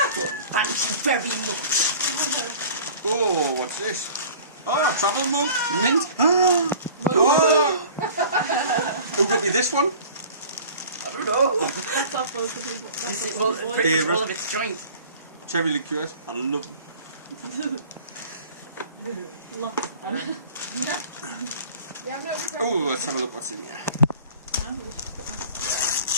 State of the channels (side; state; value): both; inverted; correlation -0.44